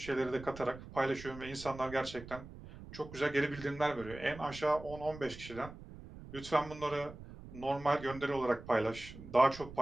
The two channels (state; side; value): noise; right; rumble, 14 dB below the sound